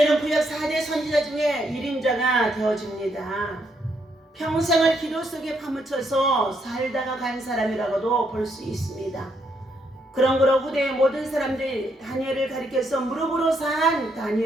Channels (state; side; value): normal; both; correlation 0.75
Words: 구약 4대 선지자 중에 1인자가 되어집니다. 평생을 기도 속에 파묻혀서 살다가 간 사람이라고도 볼 수 있습니다. 그러므로 후대의 모든 사람들이 다니엘을 가리켜서 무릎으로 산